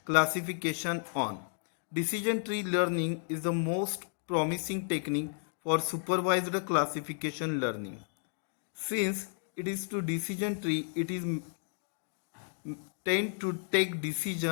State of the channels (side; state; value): right; silent; 56 dB below the other